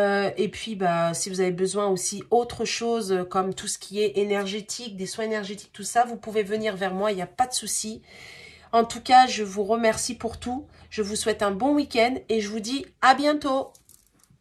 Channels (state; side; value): identical; both; correlation 1.00